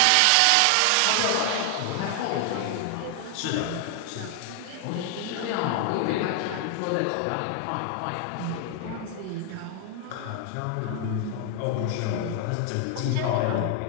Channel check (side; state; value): both; different; correlation 0.00